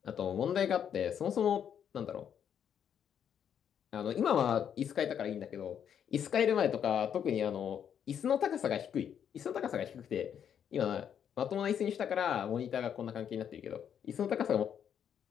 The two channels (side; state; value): right; quieter; 8.6 dB